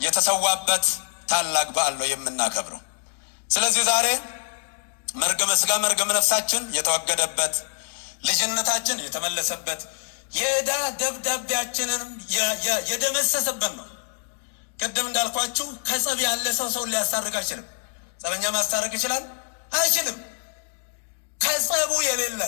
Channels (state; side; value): silent; right; 59 dB below the other